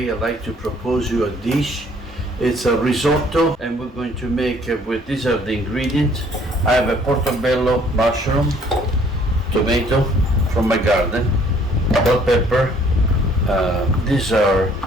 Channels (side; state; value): both; normal; correlation 0.60